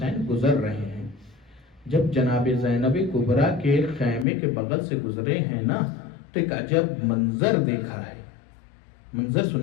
گزر رہے ہیں۔ جب جناب زینب کبریٰ کے خیمے کے بغل سے گزرے ہیں نا، تو ایک عجب منظر دیکھا ہے۔ منظر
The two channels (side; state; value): right; drops out; at 4.2 s